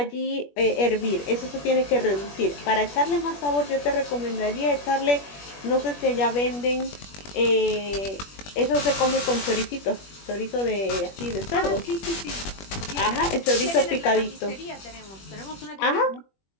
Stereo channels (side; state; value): right; late; 21 ms